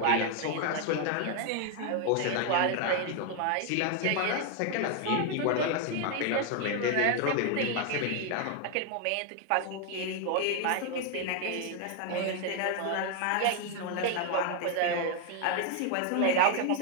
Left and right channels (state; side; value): different; both; correlation 0.00